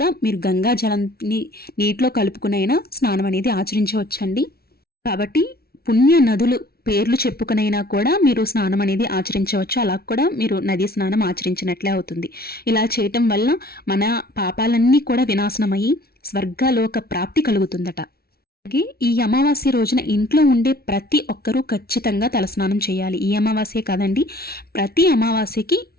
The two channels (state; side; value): late; right; 0.44 ms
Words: మీరు గంగా జలాన్ని నీటిలో కలుపుకునైనా స్నానం అనేది ఆచరించవచ్చండి. కాబట్టి పుణ్య నదులు పేర్లు చెప్పుకునైనా కూడా మీరు స్నానం అనేది ఆచరించవచ్చు. అలా కూడా మీరు నదీ స్నానం ఆచరించినట్లే అవుతుంది. ఇలా చేయటం వల్ల మన పాపాలన్నీ కూడా వినాశనమయ్యి స్వర్గలోక ప్రాప్తి కలుగుతుందట. అలాగే ఈ అమావాస్య రోజున ఇంట్లో ఉండే ప్రతి ఒక్కరూ ఖచ్చితంగా తలస్నానం చేయాలి. ఈ అమావాస్య కాదండి, ప్రతి అమావాస్యకి